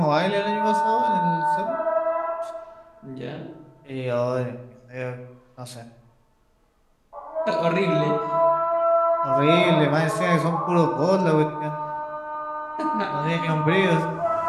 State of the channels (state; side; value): identical; both; correlation 1.00